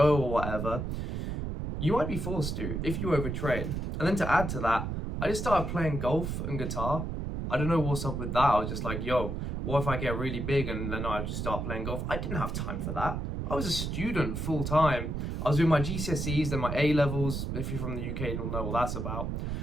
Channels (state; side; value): noise; right; rumble, 3 dB below the sound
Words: or whatever, you might be forced to if you overtrain. And then to add to that, I just started playing golf and guitar. I don't know what's up with that. I was just like, yo, what if I get really big and then I just start playing golf? I didn't have time for that. I was a student full time. I was doing my GCSEs, then my A-levels. If you're from the UK, you'll know what that's about.